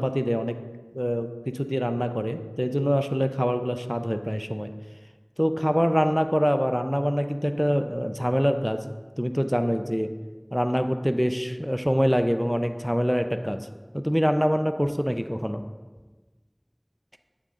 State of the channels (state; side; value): identical; both; correlation 1.00